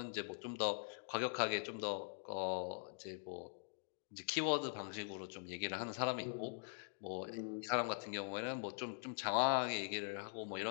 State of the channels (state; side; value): silent; right; digital silence